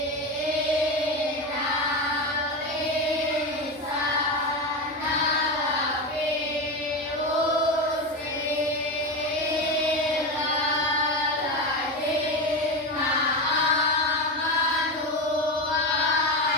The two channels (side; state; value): both; normal; correlation 0.18